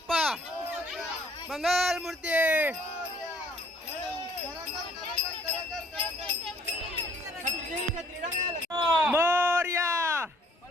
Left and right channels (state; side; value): normal; both; correlation 0.61